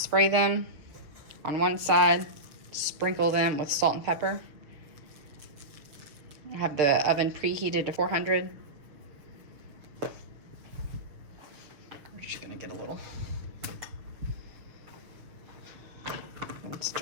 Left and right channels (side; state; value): left; late; 6.8 ms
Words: them on one side, sprinkle them with salt and pepper. I have the oven preheated to 400. We're just gonna get a little, and